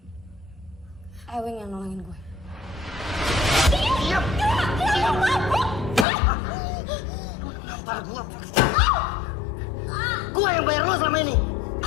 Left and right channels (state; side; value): drops out; right; at 6.1 s